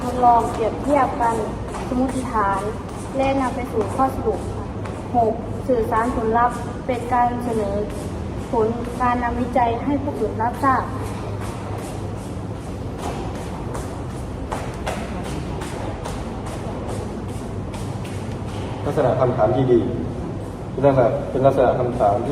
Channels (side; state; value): both; identical; correlation 1.00